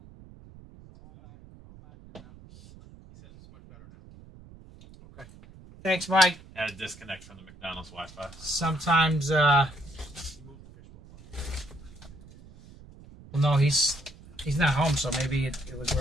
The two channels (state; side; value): noise; right; rumble, 21 dB below the sound